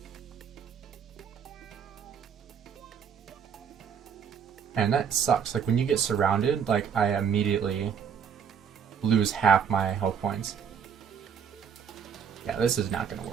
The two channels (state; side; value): quieter; left; 7.4 dB